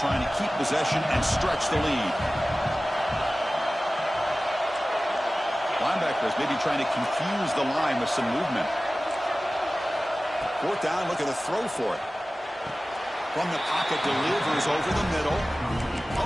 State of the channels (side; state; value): both; normal; correlation 0.97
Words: to keep possession and stretch the lead. Linebackers maybe trying to confuse the line with some movement. Fourth down, look at the throw for it. From the pocket, delivers over the middle. Oh,